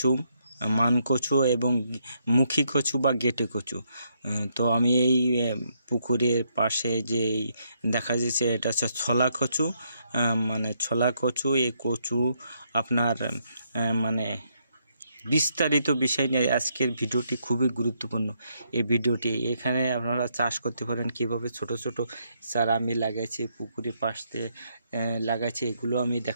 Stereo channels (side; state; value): both; inverted; correlation -0.75